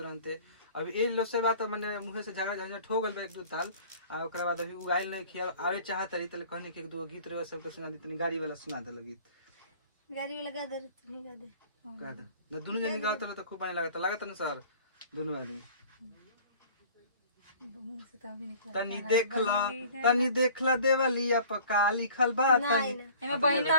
अभी ए लो से बात माने मुंह से झगड़ा झंझट हो गल एक दो ताल, आ ओकरा बाद अभी उगाइल नहीं खिया आवे चाहत रही तले कहने के एक दो गीत रे सबके सुना दी, तनी गाड़ी वाला सुना दे गीत, गाड़ी वाला गा दे तुम्ही गा दे न दोनों जनी गावत तो खूब पानी लागत न सर दोनों आदमी। तनी देखला देवलिया पका लिखल बा, तनी एमे बहिना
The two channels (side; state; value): both; inverted; correlation -0.48